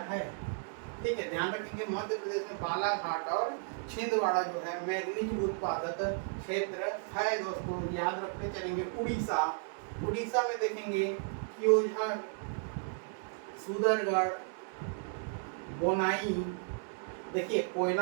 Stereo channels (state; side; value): silent; left; 55 dB below the other